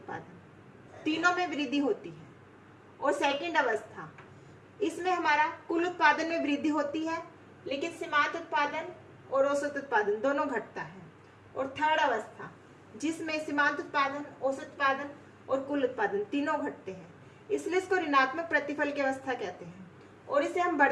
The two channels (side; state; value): both; identical; correlation 1.00